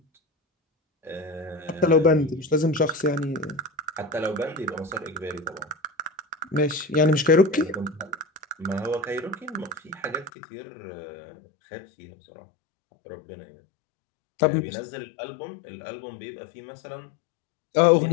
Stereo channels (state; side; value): drops out; right; at 10.3 s